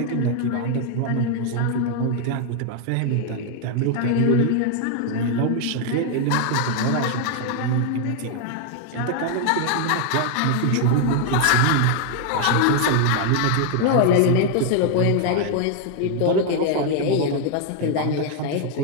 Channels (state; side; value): different; both; correlation 0.00